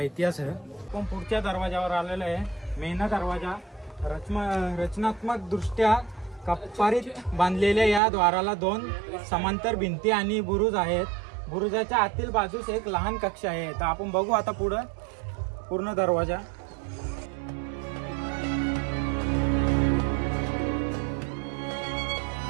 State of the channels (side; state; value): left; drops out; at 8.0 s